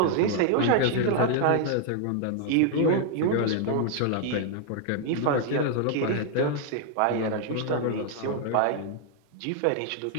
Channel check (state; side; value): different; both; correlation 0.00